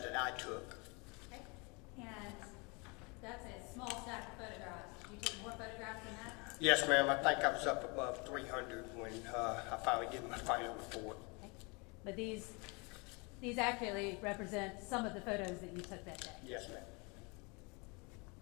I took. Okay. And that's a small stack of photographs. Did you take more photographs than that? Yes, ma'am. I think I was up above 300 when I finally did my final report. Okay. But these accurately represent some of the photos that you took that day. Yes, ma'am.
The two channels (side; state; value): right; quieter; 29.7 dB